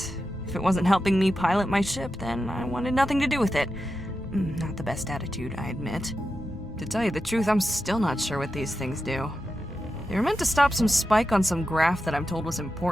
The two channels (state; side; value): normal; both; correlation 0.90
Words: If it wasn't helping me pilot my ship, then I wanted nothing to do with it. Not the best attitude, I admit. To tell you the truth, I'm still not sure what these things do. They were meant to stop some spike on some graph that I'm told was